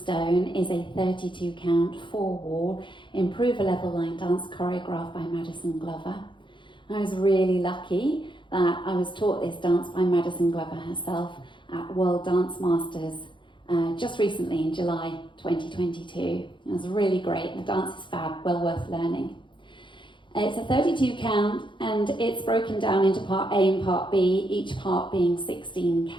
is a 32 count, 4-wall, improve a level line dance choreographed by Maddison Glover. I was really lucky that I was taught this dance by Maddison Glover herself at World Dance Masters just recently in July 2022. It was really great. The dance is fab, well worth learning. It's a 32 count and it's broken down into part A and part B, each part being 16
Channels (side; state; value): right; late; 0.23 ms